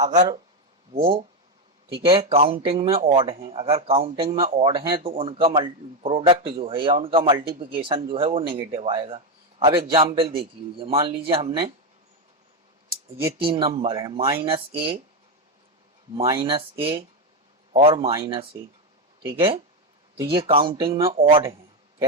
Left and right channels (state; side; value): normal; both; correlation 0.08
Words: वो ठीक है काउंटिंग में ऑड हैं, अगर काउंटिंग में ऑड हैं तो उनका प्रोडक्ट जो है या उनका मल्टीप्लिकेशन जो है वो नेगेटिव आएगा। अब एग्जाम्पल देख लीजिए, मान लीजिए हमने ये 3 नंबर है माइनस ए और माइनस ए, ठीक है, तो ये काउंटिंग में ऑड हैं।